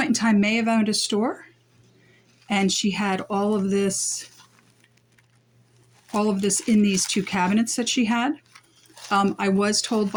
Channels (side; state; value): both; identical; correlation 1.00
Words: in time, may have owned a store, and she had all of this in these 2 cabinets that she had. I was told